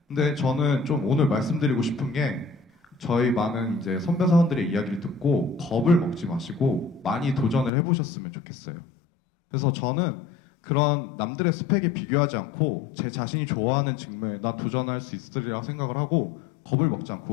근데 저는 좀 오늘 말씀드리고 싶은 게 저희 많은 이제 선배 사원들의 이야기를 듣고 겁을 먹지 마시고 많이 도전을 해보셨으면 좋겠어요. 그래서 저는 그런 남들의 스펙에 비교하지 않고 제 자신이 좋아하는 직무에 난 도전할 수 있으리라 생각을 하고 겁을 먹지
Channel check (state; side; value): drops out; right; at 7.7 s